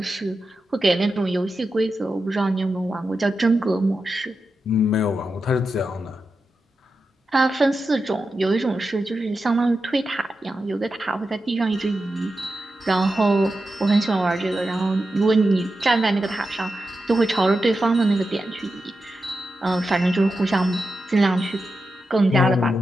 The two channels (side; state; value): both; normal; correlation 0.90